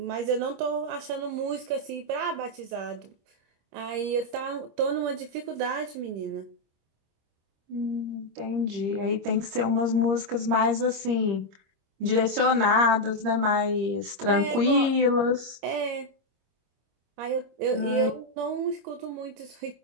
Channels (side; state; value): left; late; 26 ms